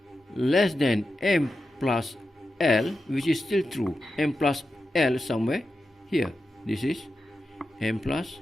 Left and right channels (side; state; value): both; normal; correlation 0.90